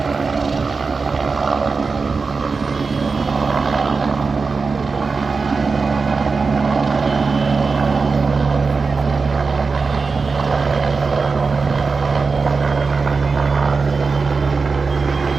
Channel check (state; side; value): quieter; left; 4.5 dB